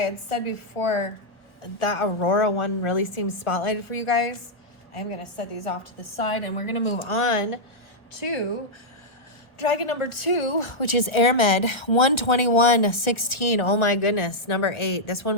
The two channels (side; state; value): right; late; 1.1 ms